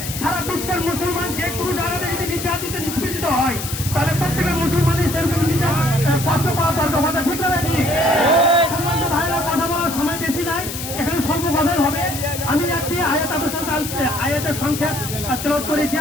সারা বিশ্বের মুসলমান যে কোনো জায়গাতে যদি নির্যাতিত নিষ্পেষিত হয়, তাহলে প্রত্যেকের মুসলমানের সেরকম কষ্ট পাওয়া দরকার, কথা ঠিক না ভাই? সম্মানিত ভাইরা, কথা বলার সময় বেশি নাই, এখানে স্বল্প কথাই হবে। আমি একটি আয়াতের সংক্ষেপ তেলাওয়াত করেছি।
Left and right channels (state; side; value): noise; left; hiss, 7 dB below the sound